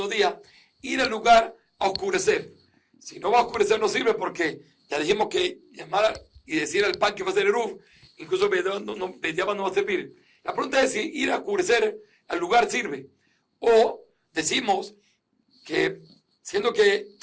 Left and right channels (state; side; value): identical; both; correlation 1.00